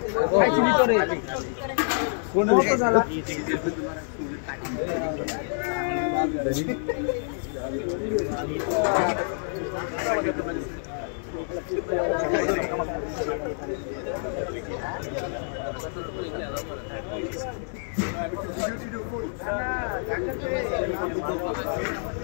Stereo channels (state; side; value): silent; right; digital silence